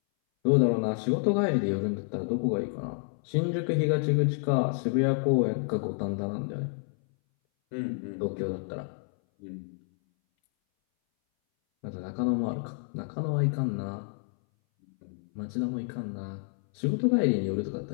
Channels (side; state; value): right; silent; 59 dB below the other